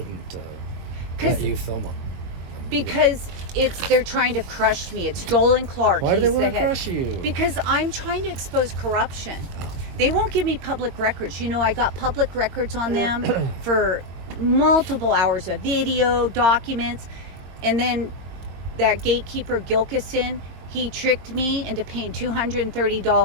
'Cause- let you film them. Because they're trying to crush me. It's Joel and Clark. Why do they He's the want to head. crush you? Because I'm trying to expose corruption. They won't give me public records. You know, I got public records on them for multiple hours of video, documents, and then that gatekeeper Gilkison, he tricked me into paying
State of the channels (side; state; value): left; late; 22 ms